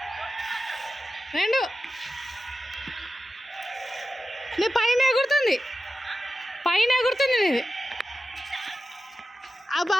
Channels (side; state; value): both; normal; correlation 0.92